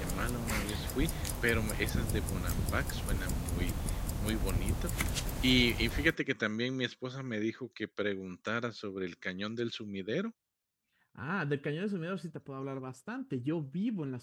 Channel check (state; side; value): identical; both; correlation 1.00